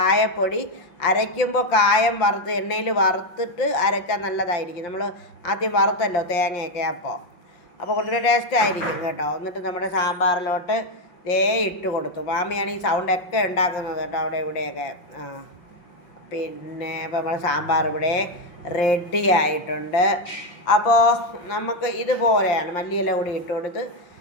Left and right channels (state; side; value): late; right; 5.7 ms